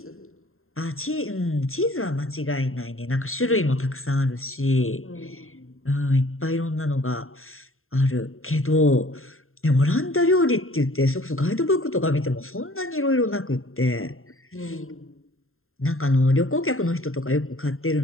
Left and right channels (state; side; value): late; right; 0.61 ms